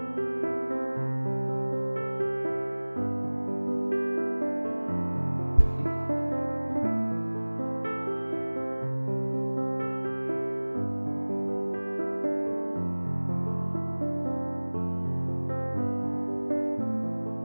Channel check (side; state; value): both; inverted; correlation -1.00